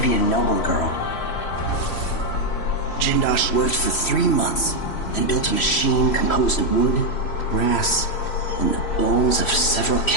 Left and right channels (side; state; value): right; late; 3.1 ms